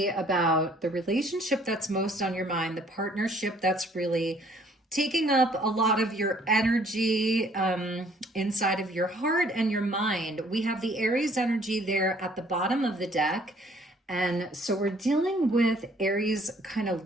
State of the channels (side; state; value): both; normal; correlation 0.60